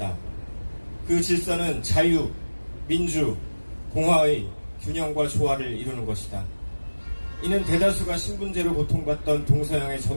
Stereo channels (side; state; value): both; inverted; correlation -1.00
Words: 그 질서는 자유, 민주, 공화의 균형과 조화를 이루는 것이다. 이는 대다수가 신분제로 고통받던 동서양의